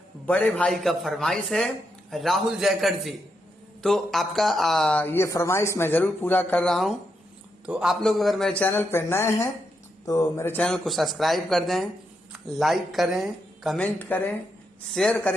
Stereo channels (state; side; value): normal; both; correlation 0.82